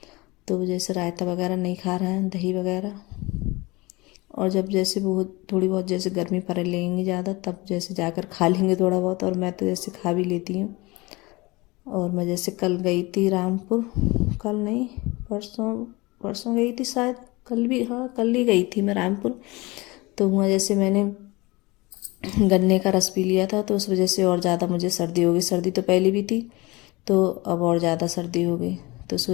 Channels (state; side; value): quieter; right; 23.1 dB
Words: तो जैसे रायता वगैरह नहीं खा रहे हैं दही वगैरह। और जब जैसे बहुत थोड़ी बहुत जैसे गर्मी पड़ लेंगी ज़्यादा तब जैसे जाकर खा लेंगे थोड़ा बहुत, और मैं तो जैसे खा भी लेती हूँ। और मैं जैसे कल गई थी रामपुर, कल नहीं परसों, परसों गई थी शायद, कल भी, हाँ कल ही गई थी मैं रामपुर। तो वहाँ जैसे मैंने गन्ने का रस पी लिया था तो उस वजह से और ज़्यादा मुझे सर्दी हो गई। सर्दी तो पहले भी थी तो अब और ज़्यादा सर्दी हो गई। तो उस